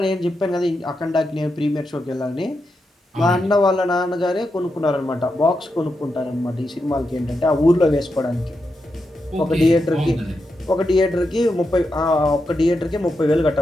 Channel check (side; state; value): both; normal; correlation 0.86